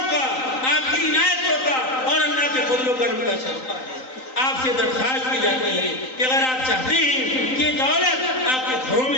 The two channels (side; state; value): right; late; 3.9 ms